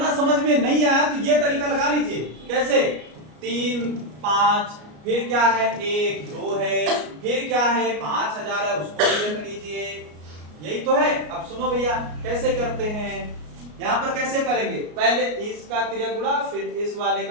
समझ में नहीं आया तो ये तरीका लगा लीजिए। कैसे? 3, 5, फिर क्या है 1, 2 है, फिर क्या है 5,000 है, उसको लिख लीजिए। यही तो है। अब सुनो भैया कैसे करते हैं। यहाँ पर कैसे करेंगे? पहले इसका तिर्यक गुणा, फिर इस वाले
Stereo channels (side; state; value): left; late; 33 ms